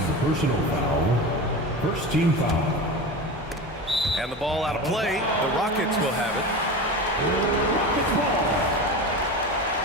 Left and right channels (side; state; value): both; normal; correlation 0.27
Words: personal foul. 1st team foul. And the ball out of play. The Rockets will have it. Rockets ball.